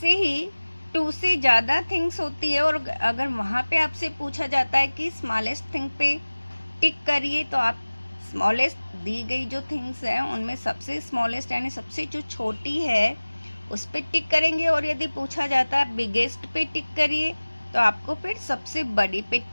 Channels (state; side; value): inverted; both; correlation -1.00